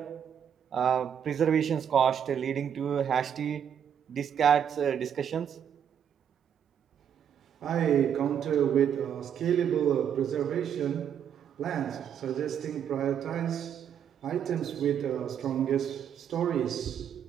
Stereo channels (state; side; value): quieter; left; 8.6 dB